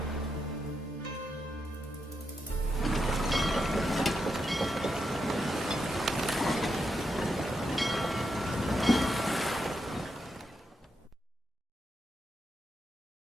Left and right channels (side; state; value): both; normal; correlation 0.84